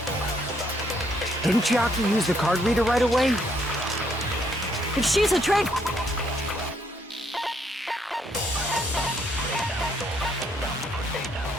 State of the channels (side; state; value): both; normal; correlation 0.70